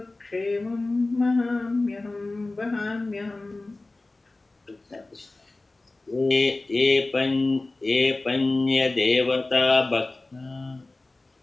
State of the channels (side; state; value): right; quieter; 3.1 dB